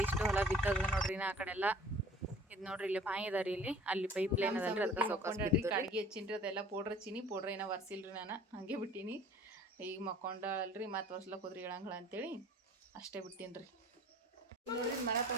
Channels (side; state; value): both; normal; correlation 0.48